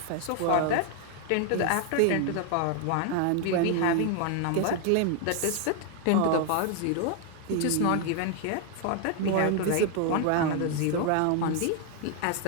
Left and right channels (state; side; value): different; both; correlation 0.00